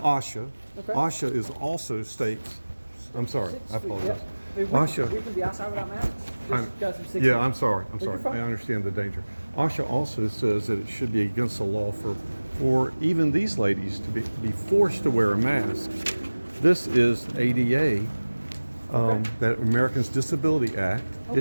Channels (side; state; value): both; inverted; correlation -1.00